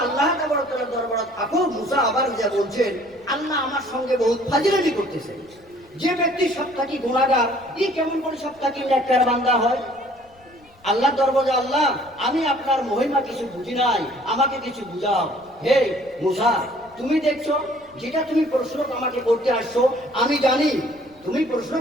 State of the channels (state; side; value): noise; left; rumble, 30 dB below the sound